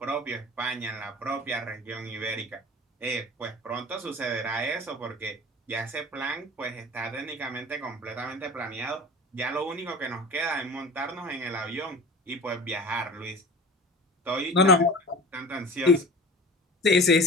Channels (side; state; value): both; normal; correlation 0.38